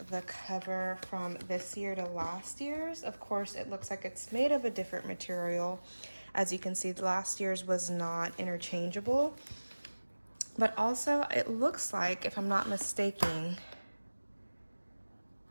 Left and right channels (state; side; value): inverted; both; correlation -1.00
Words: the cover from this year to last year's. Of course, it looks like it's made of a different material. As you can see, last year's was not interchangeable, but also it looks like, if I'm not mistaken,